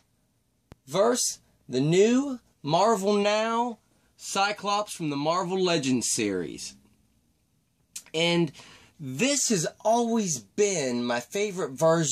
versus the new Marvel Now Cyclops from the Marvel Legends series. And this has always been my favorite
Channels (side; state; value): both; identical; correlation 1.00